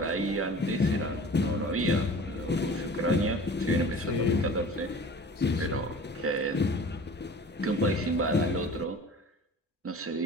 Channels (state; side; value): normal; both; correlation 0.42